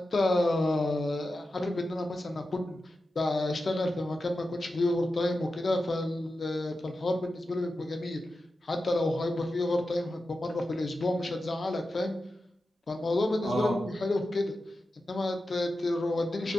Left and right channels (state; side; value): normal; both; correlation 0.91